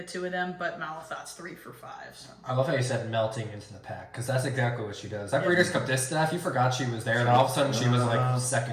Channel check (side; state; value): both; identical; correlation 1.00